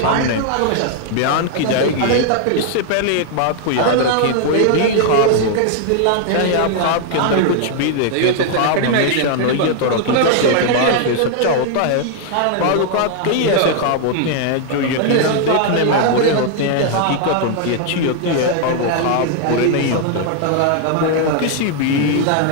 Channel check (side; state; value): both; different; correlation 0.00